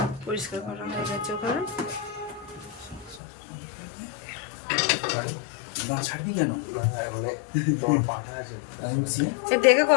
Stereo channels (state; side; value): drops out; right; at 3.2 s